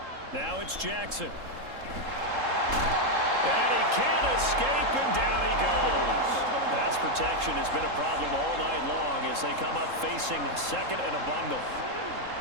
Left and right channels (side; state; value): left; late; 3.7 ms